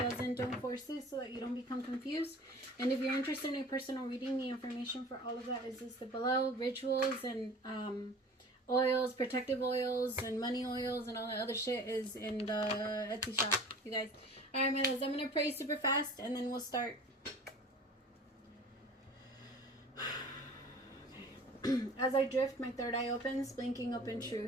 Don't force it so that you don't become confused. And if you're interested in a personal reading, the information for all of that is listed below. Rituals and oils, protective oils and money oils and all that other shit is in the Etsy shop, you guys. Alright, my loves, I'm going to pray super fast and then we'll start. As I drift, my third eye opens, blinking up in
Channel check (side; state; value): both; normal; correlation 0.43